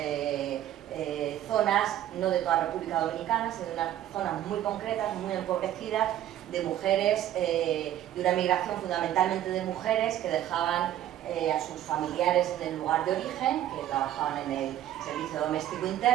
zonas, no de toda la República Dominicana, sino de unas zonas muy concretas, muy empobrecidas, de mujeres, de una migración fundamentalmente de mujeres que dejaban a sus familiares en el lugar de origen, que trabajaban en el servicio doméstico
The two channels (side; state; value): left; quieter; 12.1 dB